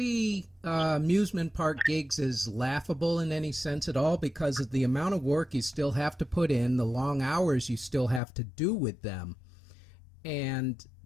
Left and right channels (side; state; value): right; drops out; at 8.2 s